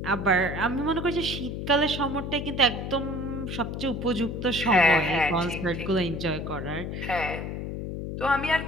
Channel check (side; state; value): left; noise; hum, 5 dB below the sound